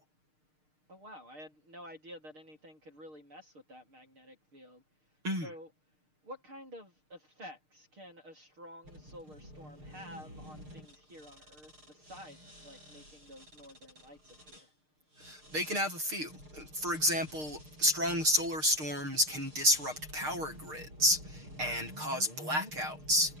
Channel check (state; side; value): late; left; 6.6 ms